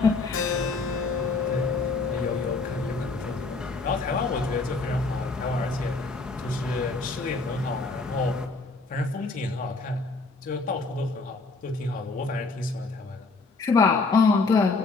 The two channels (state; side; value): quieter; right; 3.8 dB